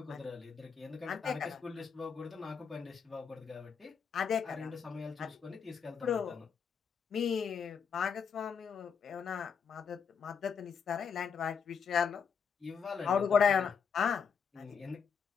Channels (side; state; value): right; quieter; 6.5 dB